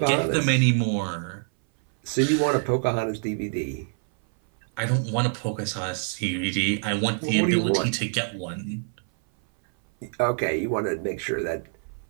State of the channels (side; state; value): left; silent; 59 dB below the other